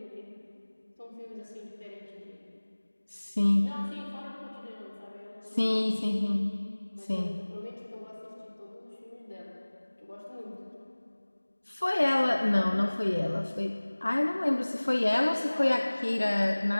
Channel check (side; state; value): both; inverted; correlation -1.00